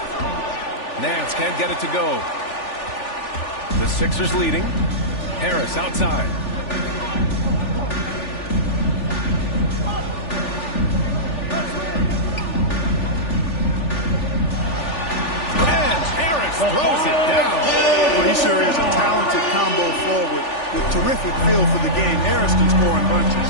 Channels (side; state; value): right; late; 3.4 ms